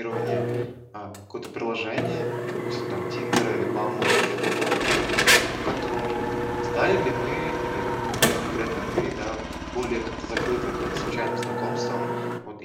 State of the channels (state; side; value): identical; both; correlation 1.00